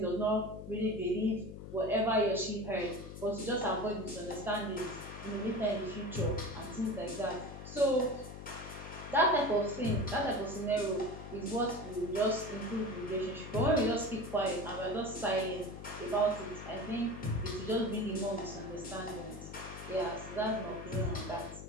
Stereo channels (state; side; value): noise; left; hum, 11 dB below the sound